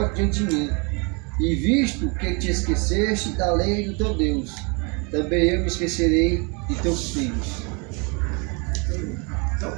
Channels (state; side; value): quieter; left; 31.7 dB